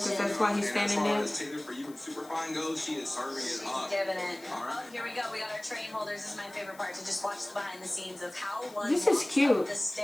because fashion. that's why he's And as standing far there. as Taylor, for you and Superfine goes, she is serving it She's up. giving it. All right. Oh, here we go. We got our train holders. This is my favorite part, to just watch the behind the scenes of how one This is walks cute. up the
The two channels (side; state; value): left; noise; hiss, 22 dB below the sound